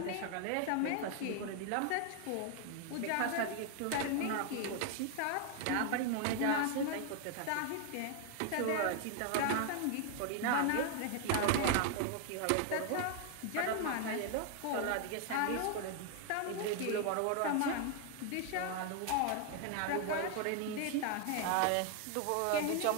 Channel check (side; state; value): both; different; correlation 0.00